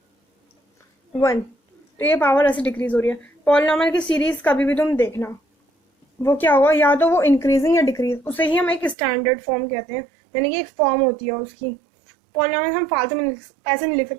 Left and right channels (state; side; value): drops out; left; at 9.0 s